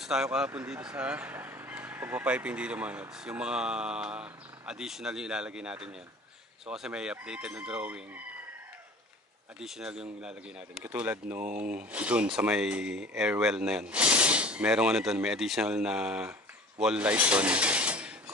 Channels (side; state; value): both; normal; correlation 0.43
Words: tayo kahapon dito sa pagpapiping dito mga Lods. Yung mga additional yung ilalagay natin yan. So kasi may updated na drawing. Additional yung ilalagay natin. Katulad nung dun sa may airwell na yan. Merong dun, may additional na wall light dun.